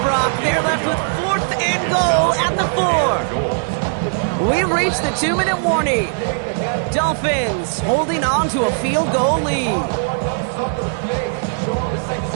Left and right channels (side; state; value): left; silent; 59 dB below the other